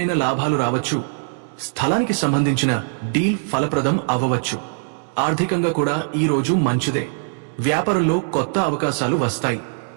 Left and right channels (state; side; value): silent; left; digital silence